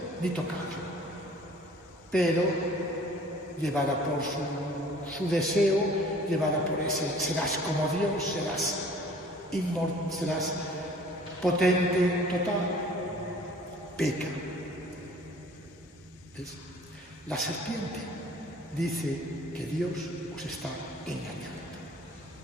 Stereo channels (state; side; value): normal; both; correlation 0.51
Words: ni tocarlo. Pero, llevada por su deseo, llevada por ese, serás como Dios, serás inmortal, serás potente, total, peca. ¿Ves? La serpiente dice que Dios os está engañando.